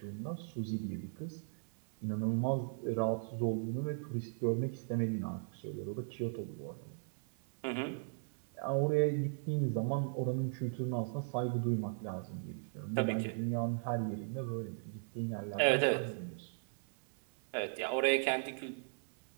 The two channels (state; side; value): silent; left; 53 dB below the other